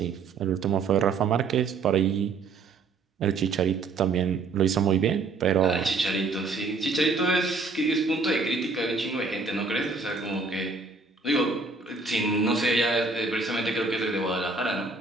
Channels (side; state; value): left; quieter; 4.1 dB